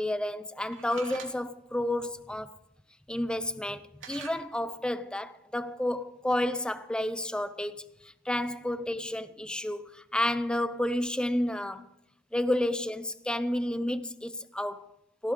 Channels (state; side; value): normal; both; correlation 0.85